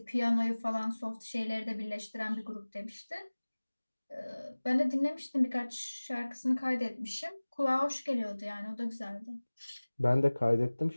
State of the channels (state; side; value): inverted; both; correlation -1.00